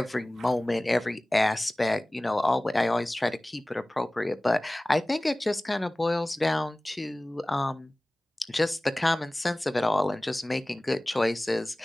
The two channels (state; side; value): normal; both; correlation 0.98